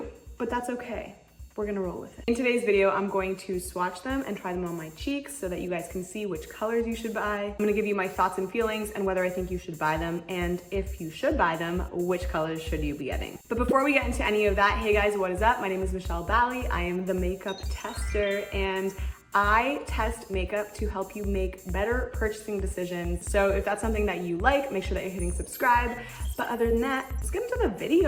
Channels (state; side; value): identical; both; correlation 1.00